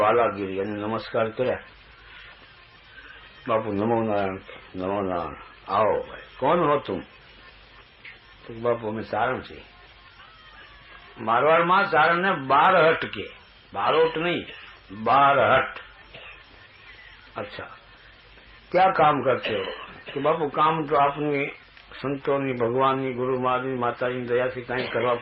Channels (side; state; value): both; identical; correlation 1.00